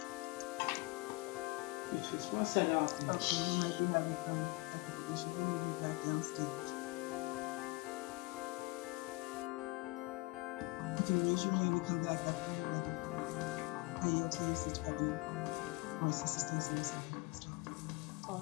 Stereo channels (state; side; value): quieter; right; 22.9 dB